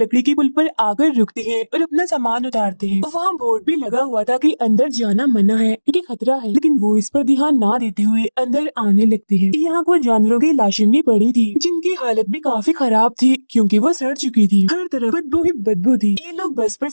की पुल पर आकर रुकते हैं और अपना सामान उतारते हैं। वहाँ बोर्ड भी लगा हुआ था कि अंदर जाना मना है क्योंकि खतरा है, लेकिन वो इस पर ध्यान ना देते हुए अंदर आने लगते हैं। यहाँ कुछ जानवरों की लाशें भी पड़ी थी, जिनकी हालत भी काफी खराब थी क्योंकि वो सड़ चुकी थी। हर तरफ बदबू ही बदबू थी। ये लोग बस पर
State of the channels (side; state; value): both; inverted; correlation -1.00